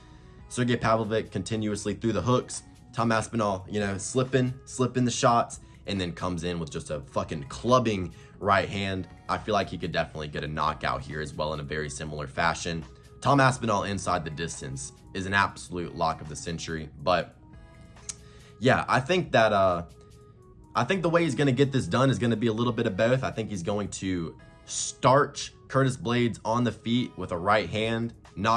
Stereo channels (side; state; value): both; identical; correlation 1.00